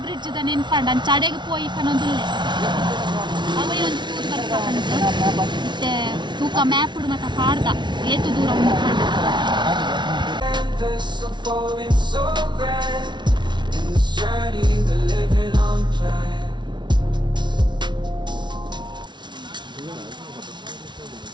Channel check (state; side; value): late; left; 0.22 ms